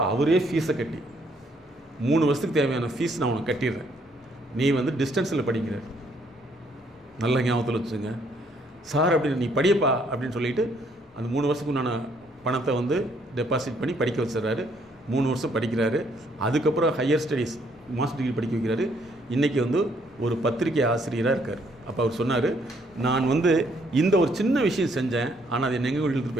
அவரே ஃபீஸை கட்டி 3 வருஷத்துக்கு தேவையான ஃபீஸ் நான் உனக்கு கட்டிடுறேன், நீ வந்து டிஸ்டன்ஸில் படிக்கிறார். நல்ல ஞாபகத்தில் வச்சுங்க சார், அப்படின்னு நீ படியப்பா அப்படின்னு சொல்லிட்டு அந்த 3 வருஷத்துக்கு நான் பணத்தை வந்து டெபாசிட் பண்ணி படிக்க வச்சிடறாரு. 3 வருஷம் படிக்கிறாரு. அதுக்கப்புறம் ஹையர் ஸ்டடீஸ் மாஸ்டர் டிகிரி படிக்க வைக்கிறாரு. இன்றைக்கி வந்து ஒரு பத்திரிகை ஆசிரியராக இருக்கார். அப்போ அவர் சொன்னார், நான் வந்து இந்த ஒரு சின்ன விஷயம் செஞ்சேன், ஆனால் அது எங்கே இழுத்துட்டு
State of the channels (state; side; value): normal; both; correlation 0.68